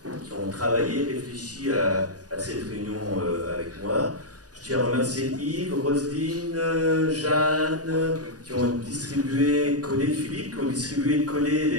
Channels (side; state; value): left; late; 0.68 ms